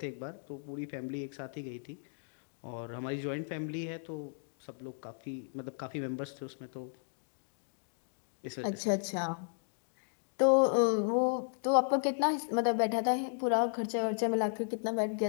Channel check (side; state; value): right; silent; digital silence